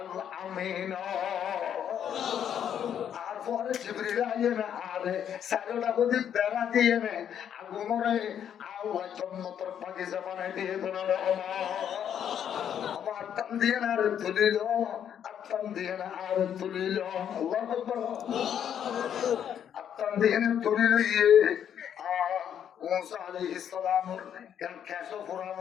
আমিন আর পরে জিবরিল আইনা আরে সাইডটা বদি বেড়া দিয়ে নে আগুনরে আল্লাহ জান্নাতের বাগিচা বানাই দিয়ে দোনা আমার আত্ম দিয়ে না আর তুলিল আত্ম দিয়ে না আর তুলিল আল্লাহু আকবার আত্ম দিয়ে না তুলিল মুসা আলাইহিস সালামের কেন কেসো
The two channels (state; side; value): quieter; right; 9.1 dB